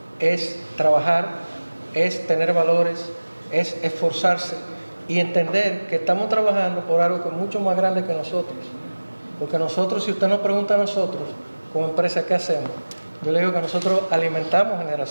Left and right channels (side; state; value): both; inverted; correlation -1.00